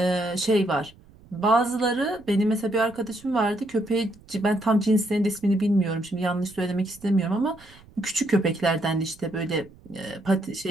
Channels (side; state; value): right; noise; rumble, 25 dB below the sound